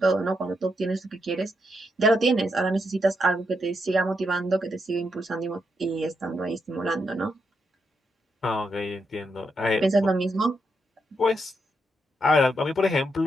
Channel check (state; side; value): normal; both; correlation 0.81